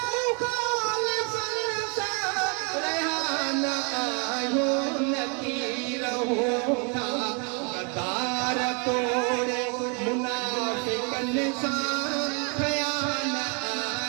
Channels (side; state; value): left; quieter; 35.1 dB